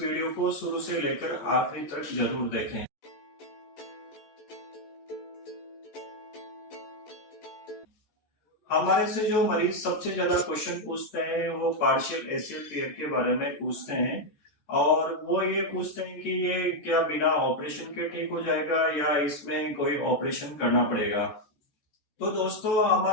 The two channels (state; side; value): late; right; 14 ms